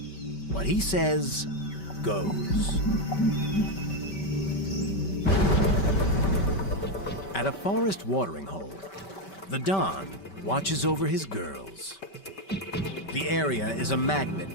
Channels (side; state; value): right; late; 5.2 ms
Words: What he says goes. At a forest watering hole, the Don watches over his girls. The area is a